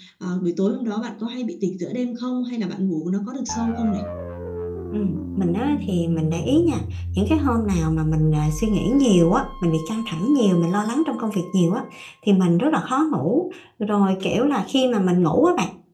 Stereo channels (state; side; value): identical; both; correlation 1.00